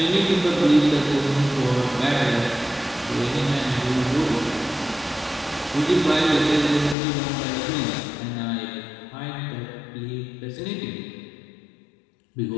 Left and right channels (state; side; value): drops out; right; at 7.0 s